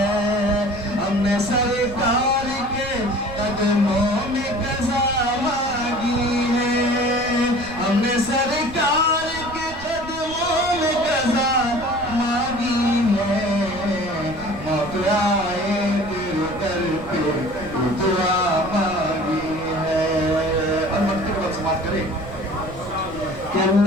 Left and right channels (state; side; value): noise; right; rumble, 16 dB below the sound